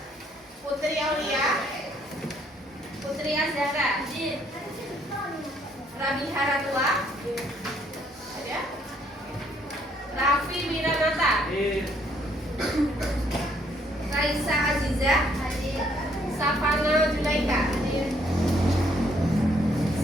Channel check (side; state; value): both; normal; correlation 0.67